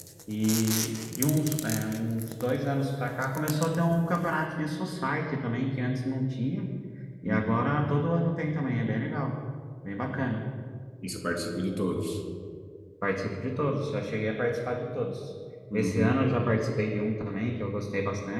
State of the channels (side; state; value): both; identical; correlation 1.00